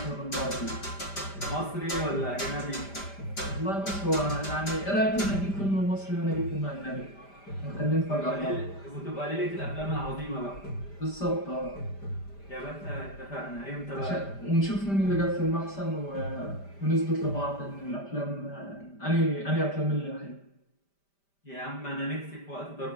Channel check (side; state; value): right; late; 5.1 ms